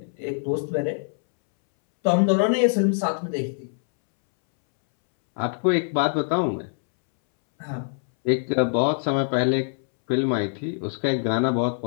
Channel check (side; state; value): right; silent; 63 dB below the other